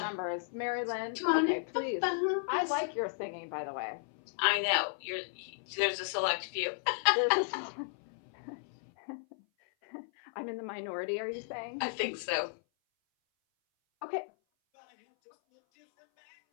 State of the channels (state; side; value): silent; right; 55 dB below the other